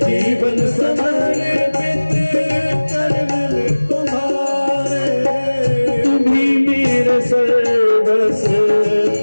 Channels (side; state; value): both; inverted; correlation -1.00